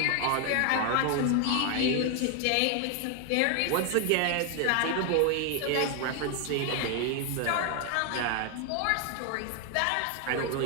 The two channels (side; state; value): both; different; correlation 0.00